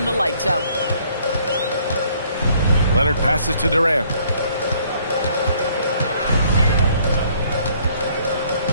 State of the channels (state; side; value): inverted; both; correlation -0.63